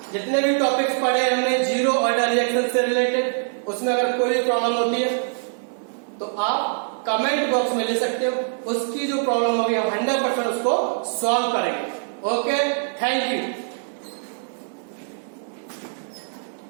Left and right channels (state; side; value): silent; left; digital silence